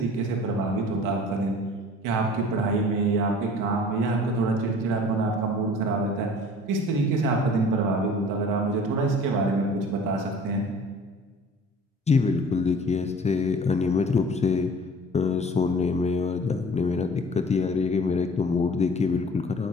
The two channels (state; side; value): normal; both; correlation 0.46